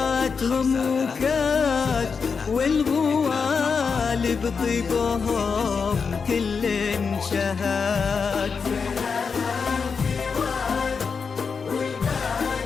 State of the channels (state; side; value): quieter; right; 5.5 dB